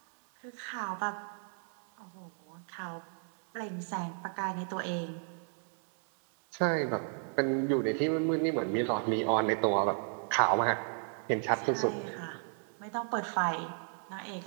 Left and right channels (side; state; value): left; silent; 55 dB below the other